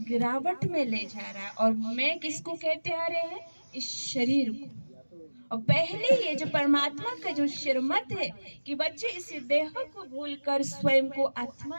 गिरावट में ले जा रहा है। और मैं किसको कहते आ रहे हैं? इस शरीर को। और पहले ये जो परमात्मा का जो श्रीमत है कि बच्चे इस देह को भूलकर स्वयं को आत्मा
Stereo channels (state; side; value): inverted; both; correlation -1.00